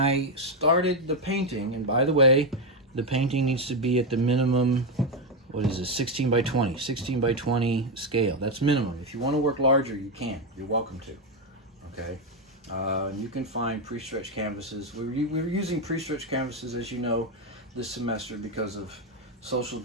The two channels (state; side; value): normal; both; correlation 0.07